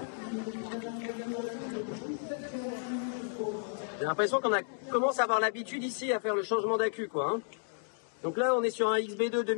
J'ai l'impression qu'on commence à avoir l'habitude ici à faire le changement d'accu, quoi. Hein. Donc là, on est sur un XB2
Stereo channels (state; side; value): silent; right; digital silence